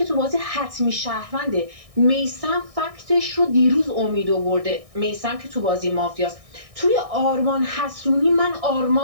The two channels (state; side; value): late; left; 1.6 ms